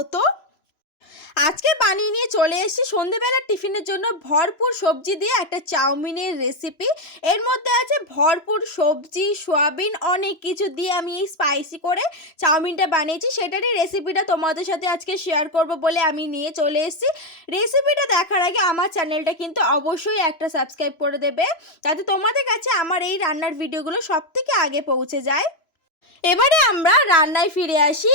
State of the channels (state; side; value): late; right; 3.0 ms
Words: আজকে বানিয়ে নিয়ে চলে এসেছি সন্ধ্যেবেলার টিফিনের জন্য ভরপুর সবজি দিয়ে একটা চাউমিনের রেসিপি। এর মধ্যে আছে ভরপুর সবজি, সোয়াবিন, অনেক কিছু দিয়ে আমি এই স্পাইসি করে চাউমিনটা বানিয়েছি। সেটারই রেসিপিটা তোমাদের সাথে আজকে শেয়ার করব বলে আমি নিয়ে চলে এসেছি। রেসিপিটা দেখার আগে আমার চ্যানেলটা কিন্তু অবশ্যই একটা সাবস্ক্রাইব করে দেবে, যাতে তোমাদের কাছে আমার এই রান্নার ভিডিওগুলো সবথেকে আগে পৌঁছে যায়। এবারে আমরা রান্নায় ফিরে আসি।